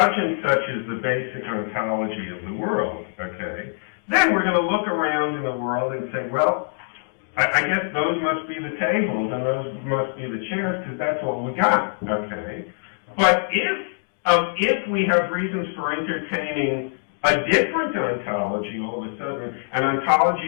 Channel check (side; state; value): right; silent; digital silence